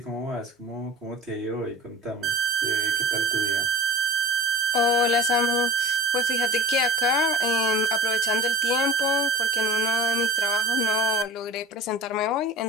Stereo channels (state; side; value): normal; both; correlation 0.38